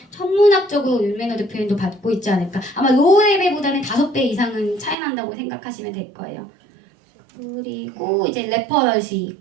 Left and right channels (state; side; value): drops out; left; at 5.0 s